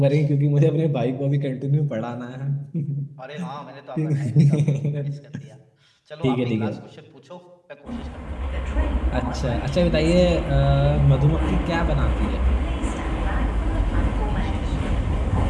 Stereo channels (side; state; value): both; identical; correlation 1.00